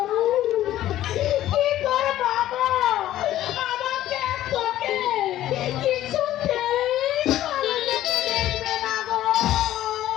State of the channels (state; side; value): quieter; right; 13.5 dB